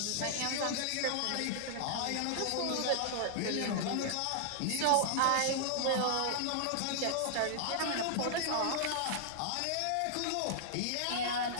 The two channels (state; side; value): different; both; correlation -0.01